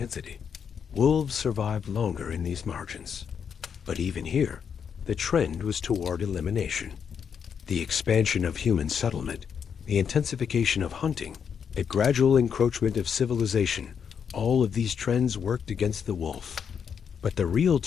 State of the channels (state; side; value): quieter; right; 7.2 dB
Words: Wolves survived longer in these margins. But even here, the trend was toward elimination. The expansion of human settlement, the intensification of hunting, a gradual encroachment of civilization, all of these trends worked against the wolf. But the real